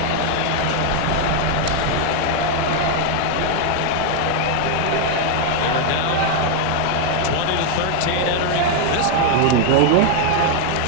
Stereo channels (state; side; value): different; both; correlation 0.01